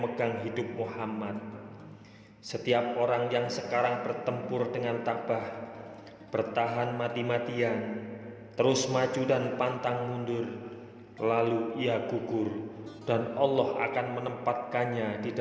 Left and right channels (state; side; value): identical; both; correlation 1.00